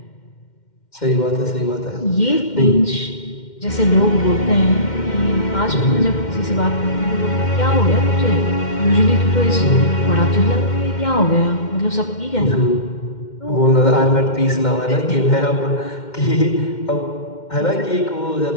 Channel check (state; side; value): late; right; 2.1 ms